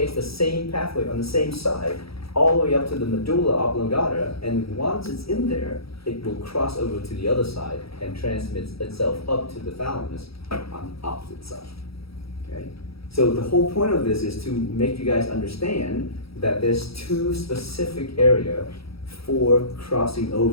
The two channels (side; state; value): right; late; 0.76 ms